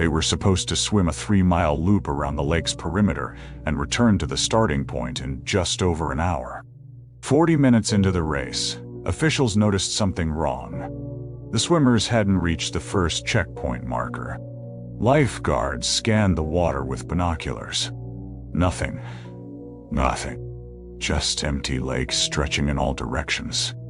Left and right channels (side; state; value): both; identical; correlation 1.00